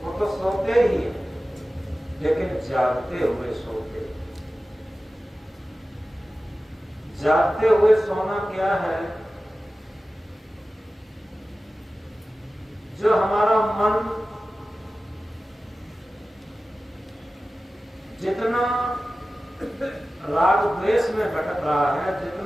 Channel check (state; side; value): normal; both; correlation 0.95